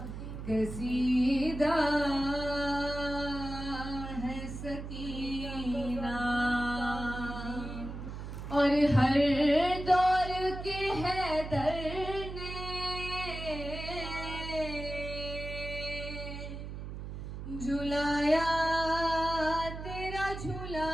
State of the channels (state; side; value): noise; right; hum, 8 dB below the sound